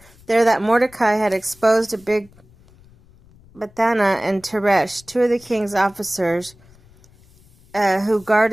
that Mordecai had exposed a big Bethana and Teresh, two of the king's officers who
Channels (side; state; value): left; noise; rumble, 27 dB below the sound